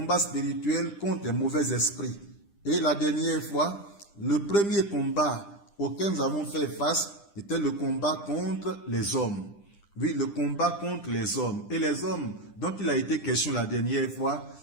spirituel contre les mauvais esprits. Et la dernière fois, le premier combat auquel nous avons fait face était le combat contre les hommes. Oui, le combat contre les hommes. Et les hommes dont il a été question la dernière fois,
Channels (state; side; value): late; right; 10 ms